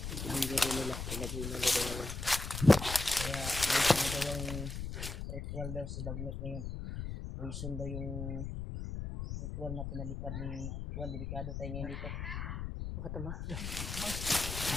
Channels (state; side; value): noise; left; rumble, 5 dB below the sound